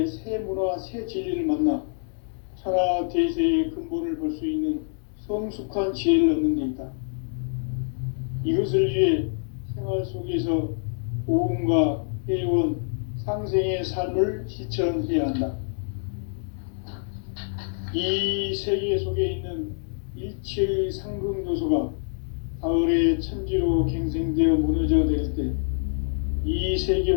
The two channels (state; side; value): silent; right; digital silence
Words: 새 문화, 새 진리를 만나 천하 대세의 근본을 볼 수 있는 성숙한 지혜를 얻는 데 있다. 이것을 위해 생활 속에서 보험과 회원, 상생의 삶을 실천해야 한다. 이 세계 속에 있는 일체의 상승 요소가 가을의 천지로 갱생되어 무너져 내릴 때 이